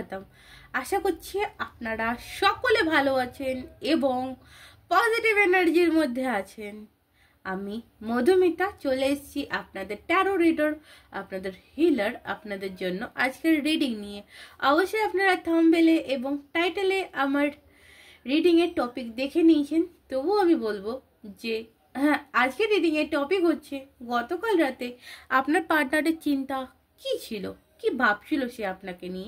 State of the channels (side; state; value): both; identical; correlation 1.00